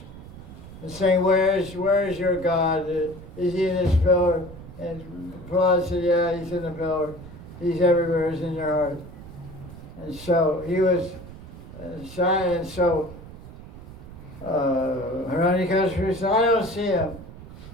and saying, where is your God? Is he in his pillar? And Prahlad said, yeah, he's in the pillar. He's everywhere, he's in your heart. And so he was shy, and so Hiranyakashipu said, I don't see him.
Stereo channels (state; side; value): noise; right; rumble, 15 dB below the sound